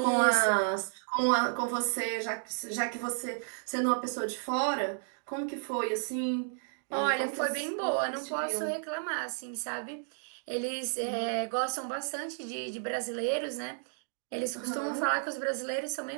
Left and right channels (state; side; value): silent; left; digital silence